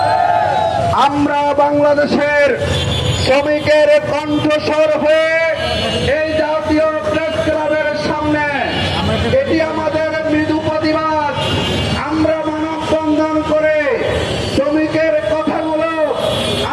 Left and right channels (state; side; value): identical; both; correlation 1.00